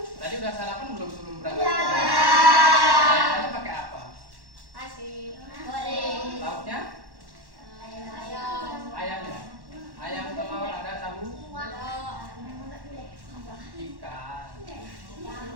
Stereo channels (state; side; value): late; left; 1.1 ms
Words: Tadi udah sarapan belum sebelum berangkat? Ya. Sarapannya pakai apa? Nasi goreng. Lauknya? Ayam. Ayamnya? Ayam, telur, ada tahu? Ikan.